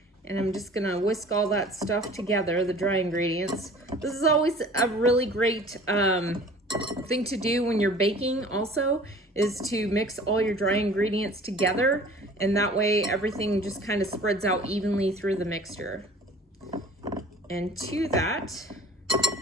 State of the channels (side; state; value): both; normal; correlation 0.47